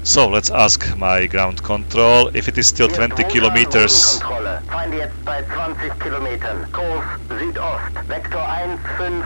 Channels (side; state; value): both; inverted; correlation -1.00